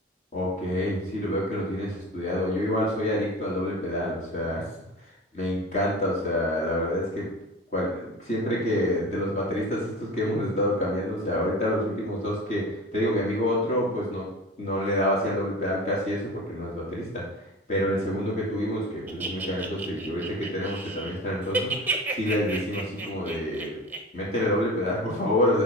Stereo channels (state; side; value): normal; both; correlation 0.34